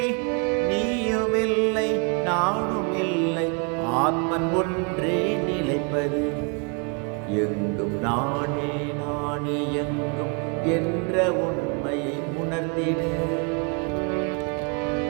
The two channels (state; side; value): quieter; left; 35.4 dB